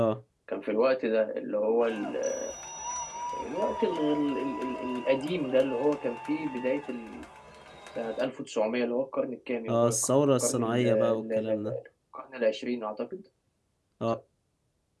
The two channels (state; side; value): identical; both; correlation 1.00